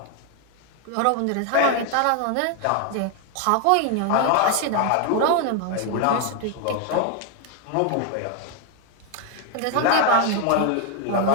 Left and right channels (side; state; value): both; different; correlation 0.01